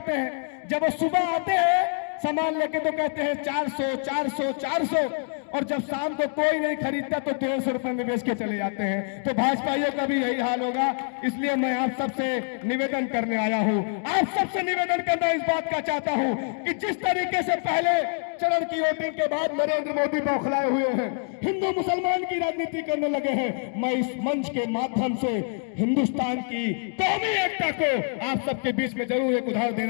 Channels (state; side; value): silent; right; 56 dB below the other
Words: हैं, जब वो सुबह आते हैं सामान लेके तो कहते हैं 400 400 400, और जब शाम को कोई नहीं खरीदता तो 150 रुपए में बेच के चले जाते हैं। तो भाजपाइयों का भी यही हाल होगा। इसलिए मैं आप सबसे निवेदन करने आया हूं, आप सबसे निवेदन करना इस बात का चाहता हूं कि जिस तरीके से पहले चरण की वोटिंग के बाद नरेंद्र मोदी बौखलाए हुए हैं, हिंदू मुसलमान की राजनीति करने लगे हैं, मैं इस मंच के माध्यम से हिंदुस्तान की कौमी एकता को आप सबके बीच में जरूर एक उदाहरण